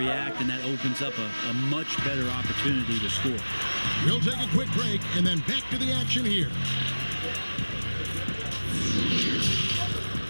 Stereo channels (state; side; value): inverted; both; correlation -1.00